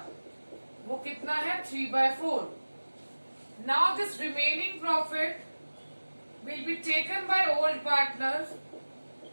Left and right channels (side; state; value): both; inverted; correlation -1.00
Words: वो कितना है 3/4. Now this remaining profit will be taken by old partners